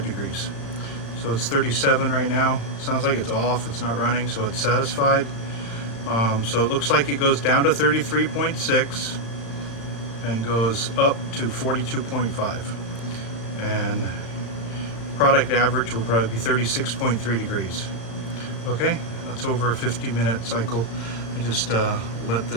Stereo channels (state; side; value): late; right; 35 ms